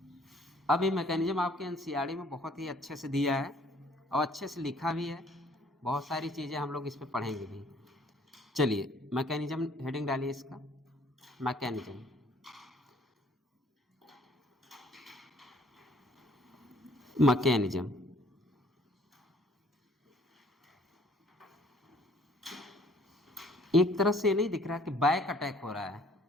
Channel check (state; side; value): normal; both; correlation 0.59